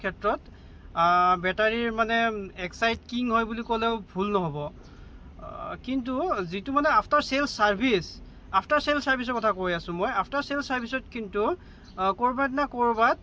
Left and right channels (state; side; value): identical; both; correlation 1.00